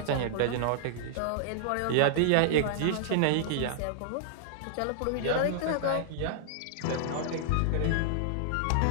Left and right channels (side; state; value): both; different; correlation -0.01